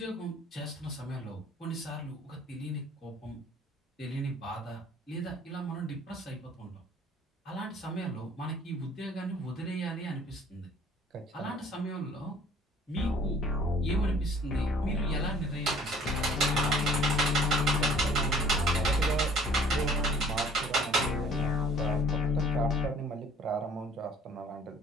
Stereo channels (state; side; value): normal; both; correlation 0.54